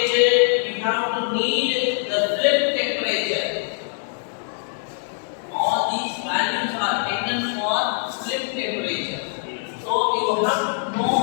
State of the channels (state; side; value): silent; right; digital silence